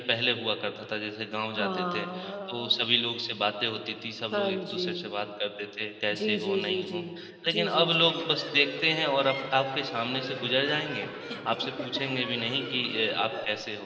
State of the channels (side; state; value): both; identical; correlation 1.00